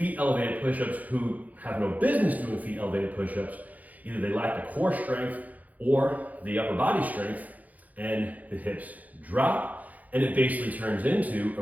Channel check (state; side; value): late; left; 0.078 ms